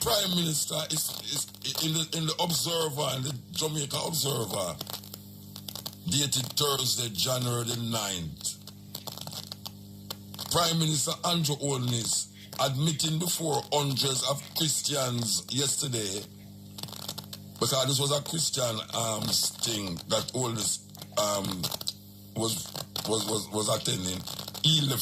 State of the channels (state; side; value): identical; both; correlation 1.00